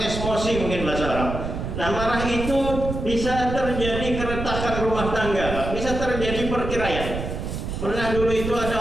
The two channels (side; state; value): right; noise; rumble, 5 dB below the sound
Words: mungkin bahasa Arab. Nah marah itu bisa terjadi keretakan rumah tangga, Pak. Bisa terjadi perceraian. Pernah dulu itu